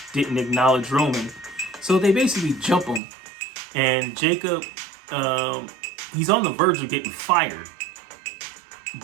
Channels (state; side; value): drops out; left; at 3.0 s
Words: didn't acknowledge Roman. So they basically jump him. And Jacob, he's on the verge of getting fired.